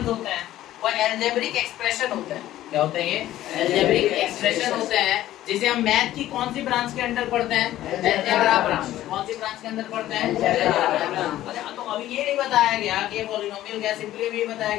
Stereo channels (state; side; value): quieter; right; 14.0 dB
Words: होते हैं वो अलजेब्रिक एक्सप्रेशन होते हैं। क्या होते हैं ये? अलजेब्रिक एक्सप्रेशन होते हैं, जिसे हम मैथ की कौन सी ब्रांच के अंडर पढ़ते हैं? Algebra branch. कौन सी ब्रांच के अंदर पढ़ते हैं? Algebra branch. अच्छा, तो अभी ये नहीं बताया गया कि ये पॉलिनोमियल क्या, सिंपली ये बताया